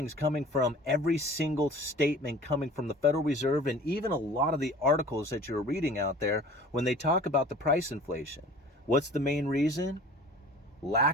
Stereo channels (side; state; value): both; normal; correlation 0.44